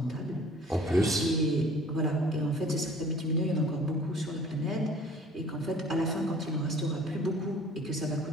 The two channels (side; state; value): both; normal; correlation 0.50